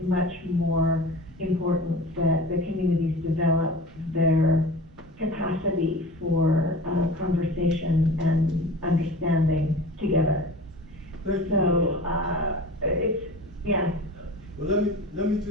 much more important that the communities develop their capacity for conversation and understanding together. Thank you. So yeah. Well, let me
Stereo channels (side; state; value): both; normal; correlation 0.37